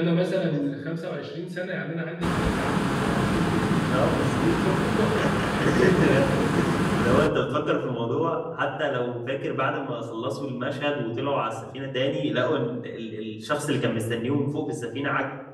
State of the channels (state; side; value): identical; both; correlation 1.00